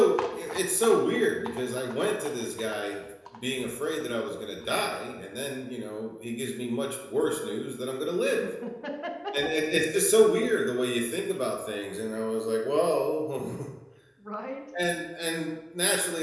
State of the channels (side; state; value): both; identical; correlation 1.00